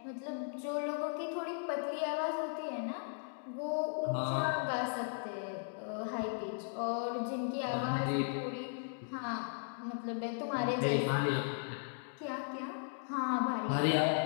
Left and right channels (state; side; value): silent; right; digital silence